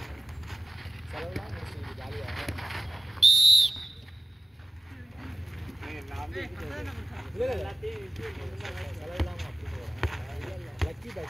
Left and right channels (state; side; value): normal; both; correlation 0.96